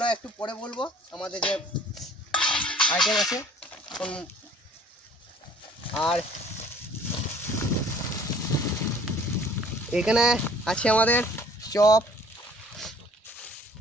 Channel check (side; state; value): both; normal; correlation 0.53